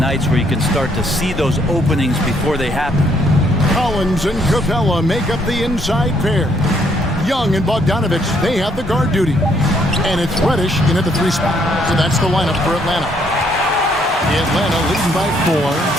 where you can start to see those openings before they happen. Collins and Capella make up the inside pair. Young and Bogdanovich, they have the guard duty. And it's Reddish in at the 3 spot. So that's the lineup for Atlanta. Atlanta leading by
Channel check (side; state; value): both; normal; correlation 0.69